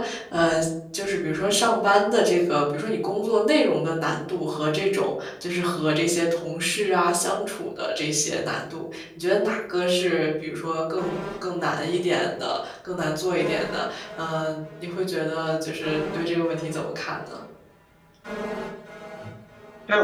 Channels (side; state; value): both; identical; correlation 1.00